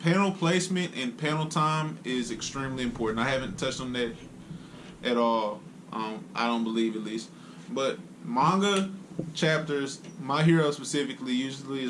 placement and panel time is extremely important. I haven't touched on that at all. I don't believe, at least. But manga chapters, My Hero specifically, usually is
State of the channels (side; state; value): both; identical; correlation 1.00